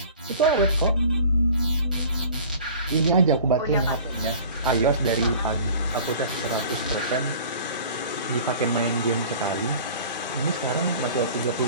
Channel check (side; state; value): both; inverted; correlation -0.45